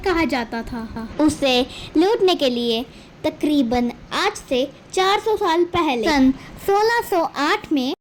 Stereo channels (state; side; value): identical; both; correlation 1.00